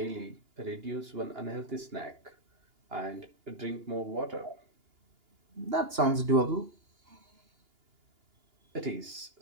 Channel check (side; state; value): left; late; 2.9 ms